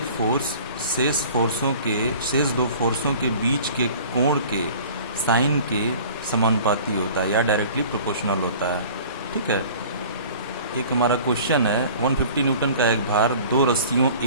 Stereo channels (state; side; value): inverted; both; correlation -0.45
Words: फोर्स शेष दो फोर्सों के बीच के कोण के साइन के समानुपाती होता है या डायरेक्टली प्रोपोर्शनल होता है। ठीक है, एक हमारा क्वेश्चन है 150 न्यूटन का एक भार दो रस्सियों